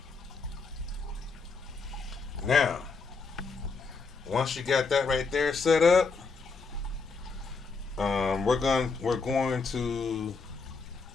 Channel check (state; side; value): quieter; right; 4.5 dB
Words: Now, once you got that right there set up, we're going to,